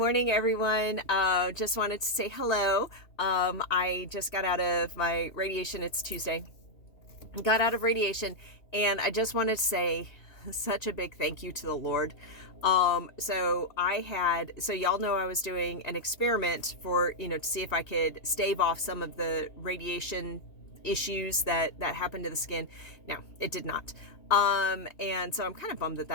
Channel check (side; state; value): right; late; 2.8 ms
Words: everyone. Just wanted to say hello. I just got out of my radiation. It's Tuesday. Got out of radiation, and I just wanted to say such a big thank you to the Lord. So y'all know I was doing an experiment for, to see if I could stave off some of the radiation issues that happened to the skin. Now, it did not. And so I'm kind of bummed